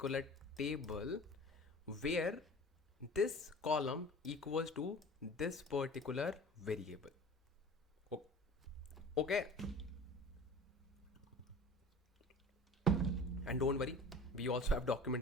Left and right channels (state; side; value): normal; both; correlation 0.40